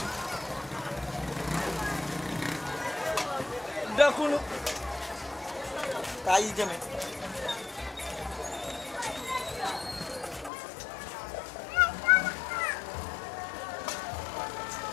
Dakulu. Tayi jeme.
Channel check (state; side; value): drops out; right; at 10.5 s